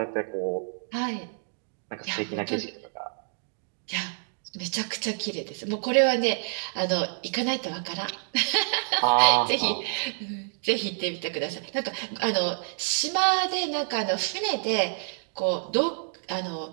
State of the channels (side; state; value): left; silent; digital silence